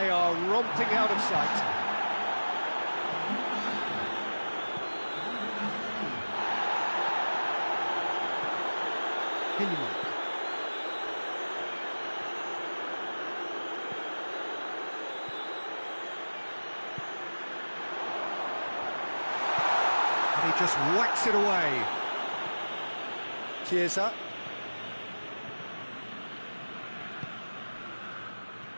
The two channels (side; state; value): both; inverted; correlation -1.00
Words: are romping out of sight. And he just whacks it away. Chiesa.